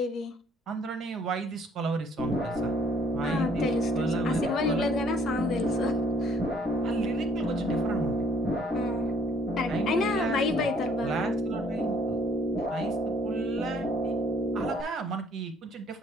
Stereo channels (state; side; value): normal; both; correlation 0.61